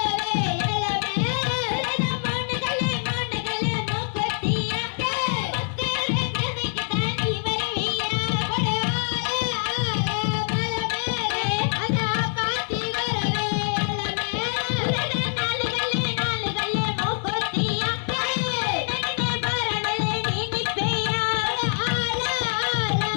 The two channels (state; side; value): silent; right; 62 dB below the other